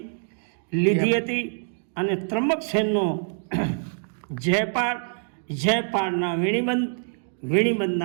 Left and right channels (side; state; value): left; silent; digital silence